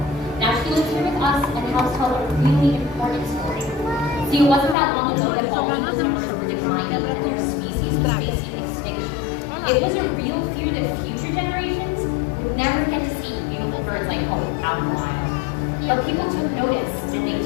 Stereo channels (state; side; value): drops out; right; at 4.8 s